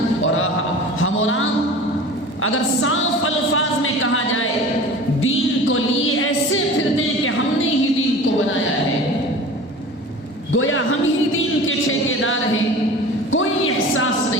اور ہم اور آپ اگر صاف الفاظ میں کہا جائے دین کو لیے ایسے پھرتے ہیں کہ ہم نے ہی دین کو بنایا ہے، گویا ہم ہی دین کے ٹھیکیدار ہیں، کوئی احساس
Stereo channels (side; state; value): both; normal; correlation 0.39